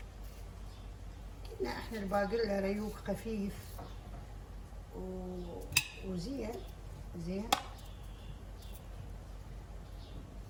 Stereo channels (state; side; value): identical; both; correlation 1.00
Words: قلنا احنا الباقلة ريوق خفيف وزين زين.